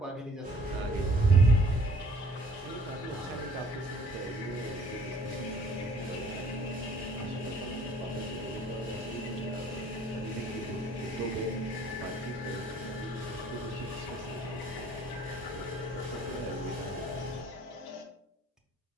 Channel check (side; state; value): both; normal; correlation 0.56